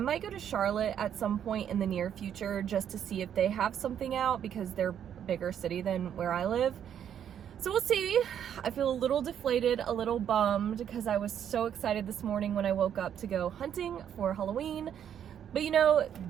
go to Charlotte at some point in the near future just to see if they have something out because they're a bigger city than where I live. So we'll see. I feel a little deflated, a little bummed because I was so excited this morning when I woke up to go hunting for Halloween. But you know,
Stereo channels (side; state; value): left; quieter; 9.3 dB